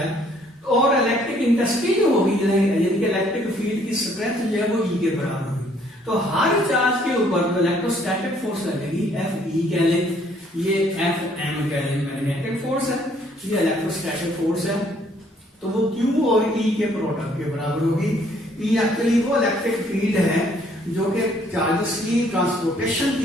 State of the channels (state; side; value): normal; both; correlation 0.63